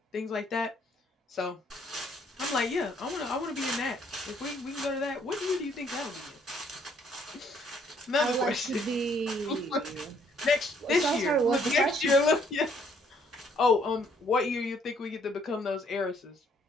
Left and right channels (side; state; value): both; normal; correlation 0.65